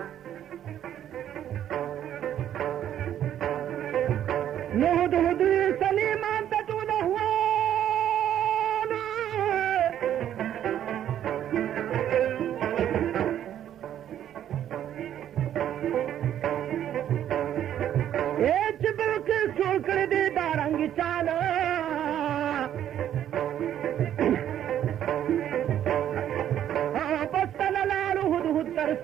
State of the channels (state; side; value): quieter; left; 10.7 dB